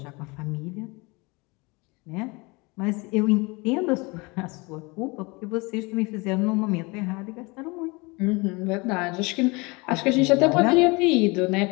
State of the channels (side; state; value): right; quieter; 26.5 dB